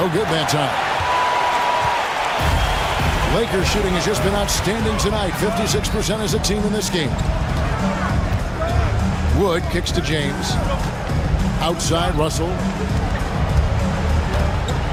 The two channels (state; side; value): identical; both; correlation 1.00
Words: good that time. Lakers shooting has just been outstanding tonight. 56% as a team in this game. Wood kicks to James. Outside, Russell.